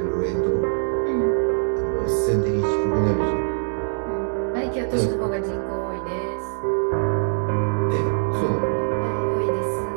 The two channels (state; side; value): silent; left; digital silence